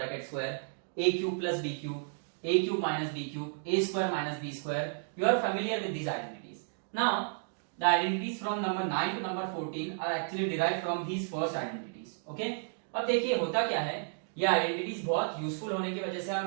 square, a cube plus b cube, a cube minus b cube, a square minus b square. You are familiar with these identities. Now, the identities from number 9 to number 14 are actually derived from these first identities. Okay? अब देखिए होता क्या है, ये identities बहुत useful होने की वजह से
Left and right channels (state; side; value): silent; left; digital silence